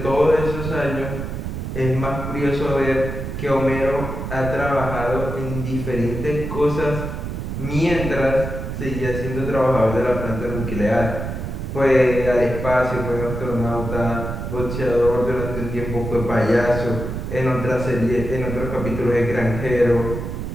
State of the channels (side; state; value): right; noise; rumble, 5 dB below the sound